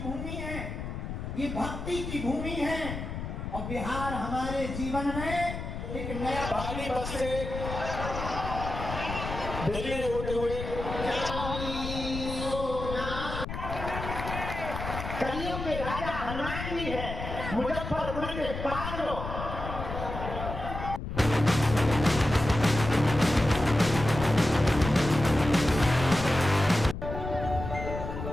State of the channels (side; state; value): left; noise; rumble, 6 dB below the sound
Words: भूमि है, ये भक्ति की भूमि है। और बिहार हमारे जीवन में एक नया पहली बस से दिल्ली में होते हुए कलियों में राजा हनुमान जी है, मुजफ्फरपुर के पागलों।